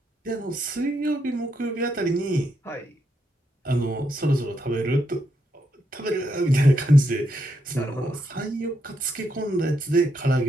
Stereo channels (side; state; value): both; normal; correlation 0.80